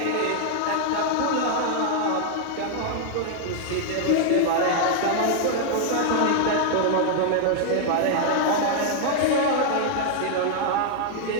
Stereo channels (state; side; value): different; both; correlation -0.01